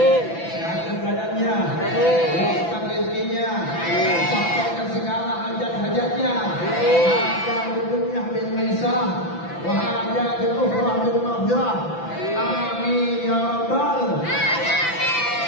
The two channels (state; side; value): late; right; 5.9 ms